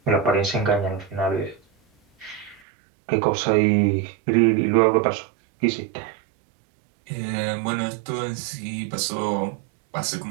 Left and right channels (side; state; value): left; drops out; at 2.6 s